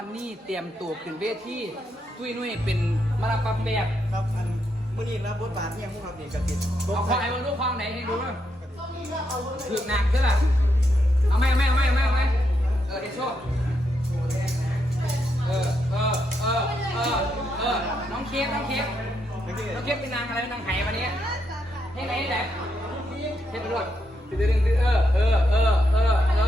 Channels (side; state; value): both; normal; correlation 0.80